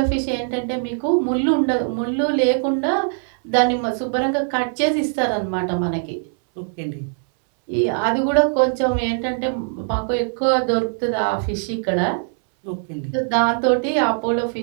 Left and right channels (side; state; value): left; silent; 65 dB below the other